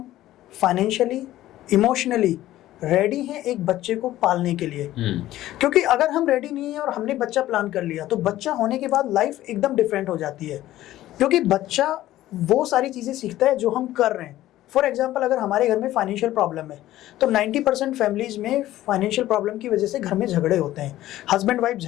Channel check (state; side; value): quieter; right; 14.6 dB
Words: फाइनेंशियली, इमोशनली रेडी हैं एक बच्चे को पालने के लिए। क्योंकि अगर हम रेडी नहीं है और हमने बच्चा प्लान कर लिया तो बच्चा होने के बाद लाइफ एकदम डिफरेंट हो जाती है। क्योंकि बच्चा वो सारी चीज़ें सीखता है जो हम कर रहे हैं। फॉर एग्जाम्पल, अगर हमारे घर में फाइनेंशियल प्रॉब्लम है तो 90% फैमिलीज में फाइनेंशियल प्रॉब्लम की वजह से घर में झगड़े होते हैं। हस्बैंड वाइफ